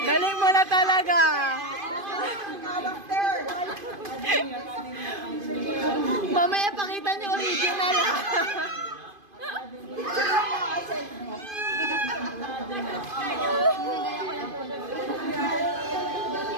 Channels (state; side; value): late; left; 2.5 ms